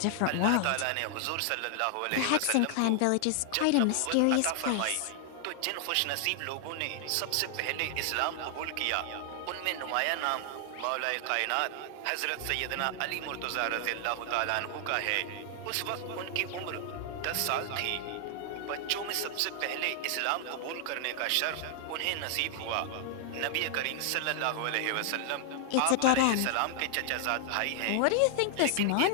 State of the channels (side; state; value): both; different; correlation 0.00